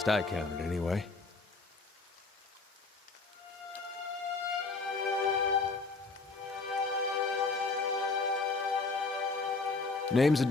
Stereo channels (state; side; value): quieter; right; 3.9 dB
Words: I counted, anyway. Name's